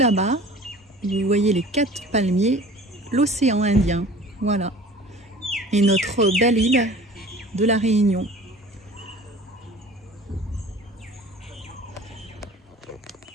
vous voyez les 4 palmiers, l'océan Indien, voilà, et notre belle île de La Réunion.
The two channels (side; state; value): both; normal; correlation 0.44